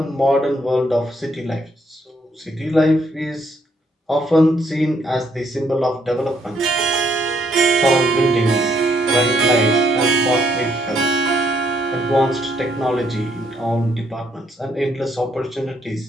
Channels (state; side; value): normal; both; correlation 0.71